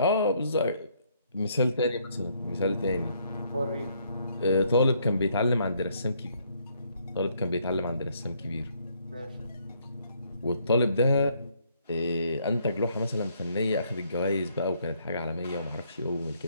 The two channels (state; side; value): inverted; both; correlation -0.69